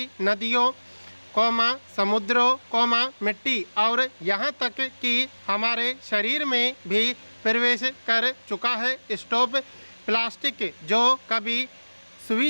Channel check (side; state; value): both; inverted; correlation -1.00